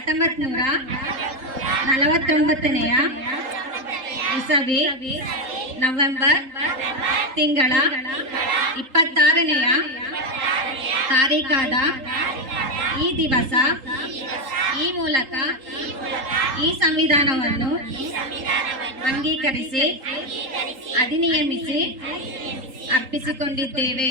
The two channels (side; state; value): left; late; 3.8 ms